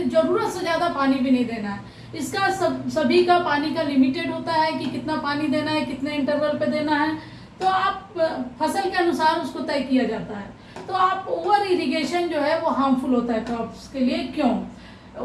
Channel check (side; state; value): both; identical; correlation 1.00